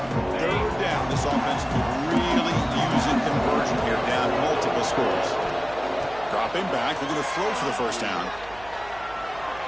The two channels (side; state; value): right; noise; hum, 20 dB below the sound